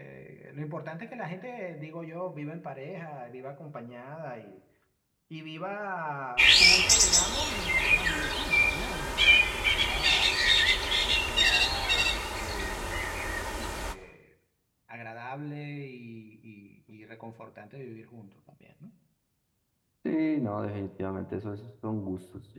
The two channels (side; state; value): both; identical; correlation 1.00